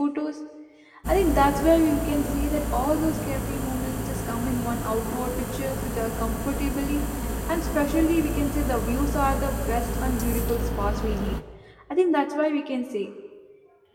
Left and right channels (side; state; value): both; identical; correlation 1.00